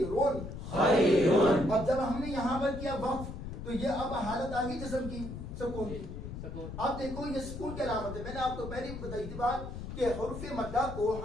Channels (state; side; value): noise; left; rumble, 8 dB below the sound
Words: خیرون. اب جب ہم نے یہاں پر کیا وقف تو یہ اب حالت آ گئی جسم کی، سکون کی. اب دیکھو یہ سکون کی علامت ہے. میں نے آپ کو پہلے بتائی تھی بات کہ حروف مدہ کو